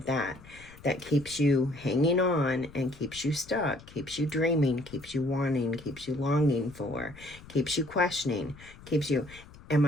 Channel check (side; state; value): left; noise; rumble, 20 dB below the sound